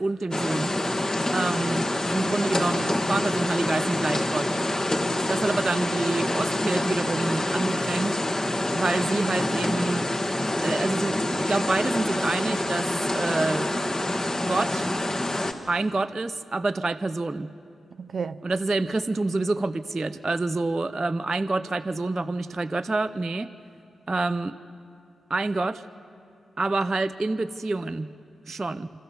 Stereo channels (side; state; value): both; normal; correlation 0.93